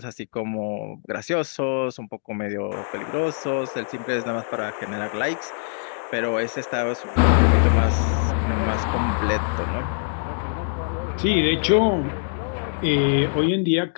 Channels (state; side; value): silent; right; digital silence